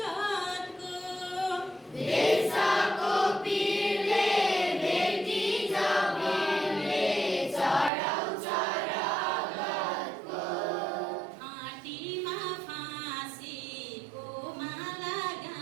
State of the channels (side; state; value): left; drops out; at 7.9 s